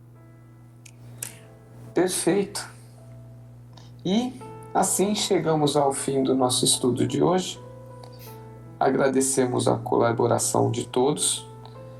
Perfeito. E assim chegamos ao fim do nosso estudo de hoje. Agradecemos a colaboração de todos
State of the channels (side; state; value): both; identical; correlation 1.00